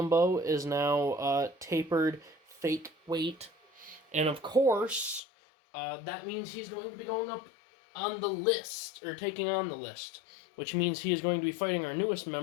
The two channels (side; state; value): right; drops out; at 5.2 s